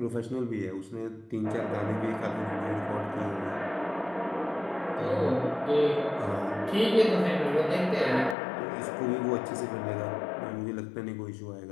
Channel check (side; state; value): right; drops out; at 8.3 s